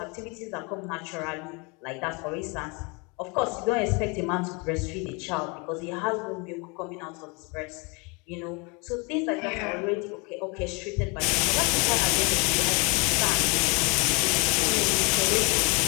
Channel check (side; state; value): right; quieter; 30.1 dB